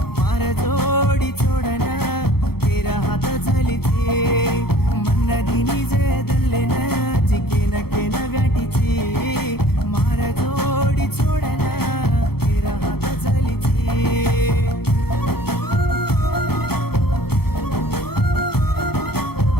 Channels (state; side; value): late; right; 0.96 ms